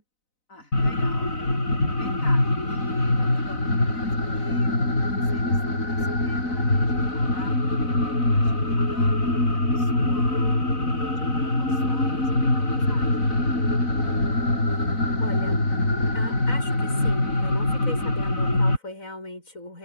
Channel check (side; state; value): right; late; 4.0 ms